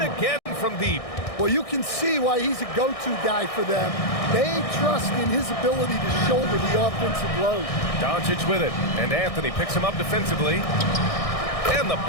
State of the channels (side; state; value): right; late; 1.6 ms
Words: from deep. Well, you can see why he's a go-to guy for them. They trust in his ability to shoulder the offensive load. Doncic with it, and Anthony picks him up defensively. And the